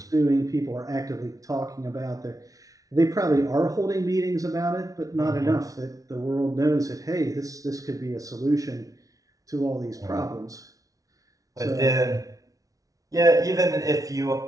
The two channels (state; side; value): late; left; 0.17 ms